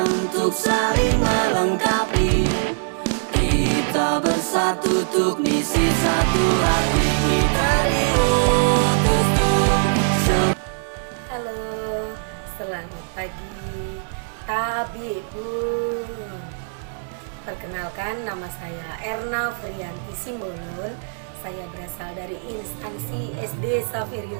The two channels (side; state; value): left; silent; digital silence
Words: untuk saling melengkapi. Kita bersatu untuk misi satu hati, kita diutus untuk. Halo, selamat pagi Tabibun. Perkenalkan, nama saya Erna Frianti Simbolon. Saya berasal dari instansi SD